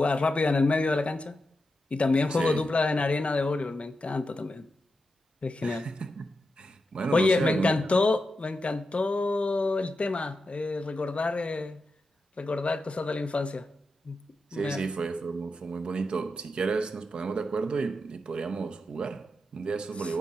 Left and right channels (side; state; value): both; normal; correlation 0.88